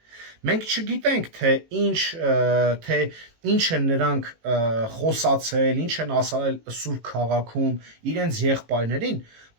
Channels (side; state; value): left; late; 18 ms